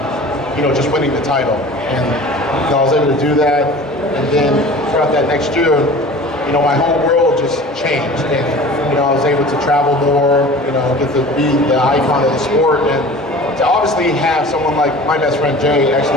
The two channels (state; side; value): normal; both; correlation 0.41